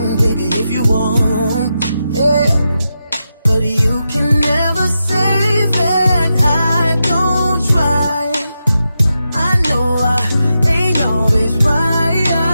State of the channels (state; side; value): inverted; both; correlation -0.88